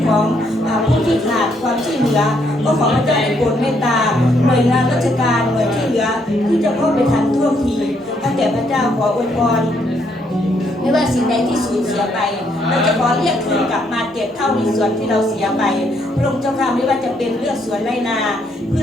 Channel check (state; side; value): normal; both; correlation 0.72